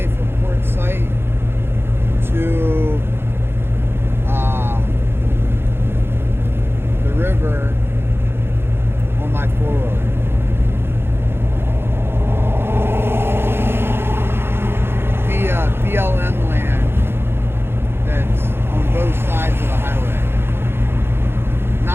from Port Site to the river on my 4-wheeler. Via BLM land that's on both sides of the highway.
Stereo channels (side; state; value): left; late; 0.11 ms